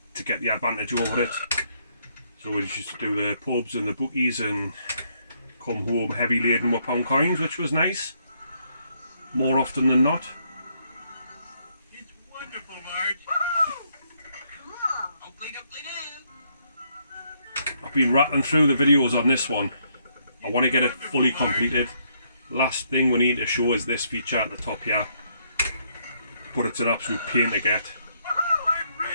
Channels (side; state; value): both; inverted; correlation -0.72